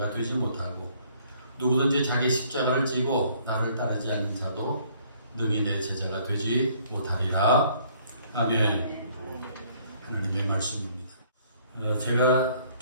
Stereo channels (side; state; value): both; inverted; correlation -0.61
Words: 되지 못하고 누구든지 자기 십자가를 지고 나를 따르지 않는 자도 능히 내 제자가 되지 못하리라. 아멘. 하나님의 말씀입니다. 제가